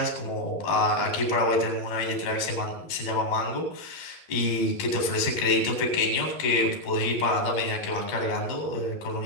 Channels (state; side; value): late; right; 11 ms